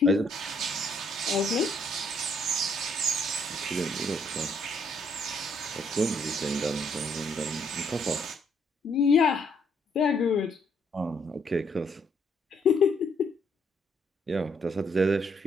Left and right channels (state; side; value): normal; both; correlation 0.69